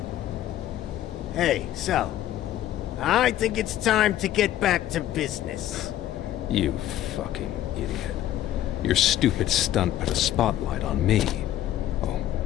Hey, so, I think it's time to get back to business. You fucking idiot. Your stupid stunt put a spotlight on me. Oh,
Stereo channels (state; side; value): quieter; right; 12.7 dB